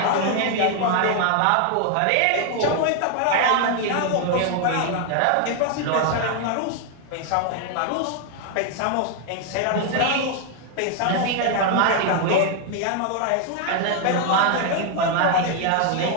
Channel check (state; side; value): different; both; correlation 0.00